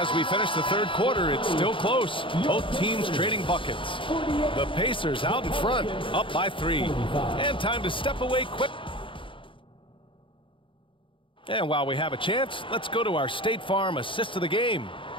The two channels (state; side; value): late; right; 0.25 ms